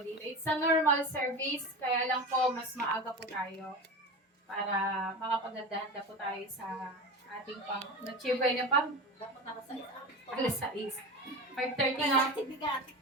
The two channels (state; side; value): normal; both; correlation 0.27